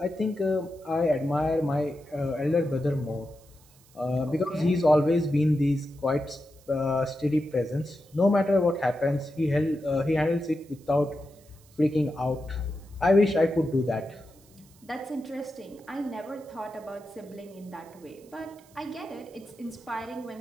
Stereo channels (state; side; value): noise; right; hiss, 28 dB below the sound